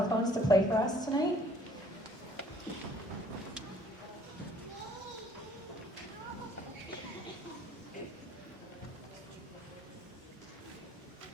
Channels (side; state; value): both; normal; correlation 0.59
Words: to play for us tonight.